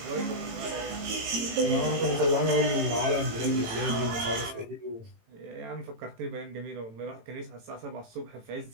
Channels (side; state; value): left; late; 18 ms